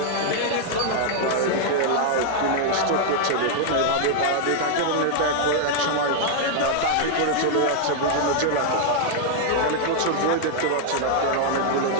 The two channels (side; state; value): both; different; correlation -0.01